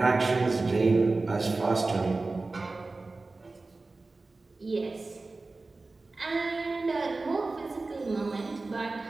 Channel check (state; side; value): quieter; left; 3.5 dB